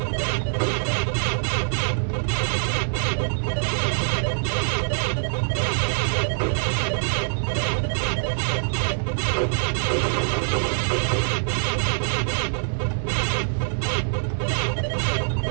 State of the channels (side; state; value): left; silent; 60 dB below the other